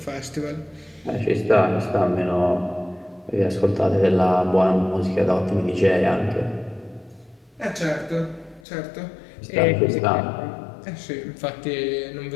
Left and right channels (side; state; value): right; drops out; at 8.6 s